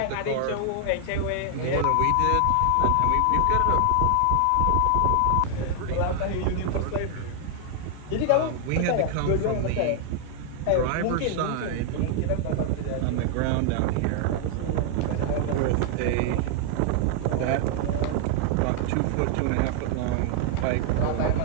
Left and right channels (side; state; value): both; different; correlation 0.00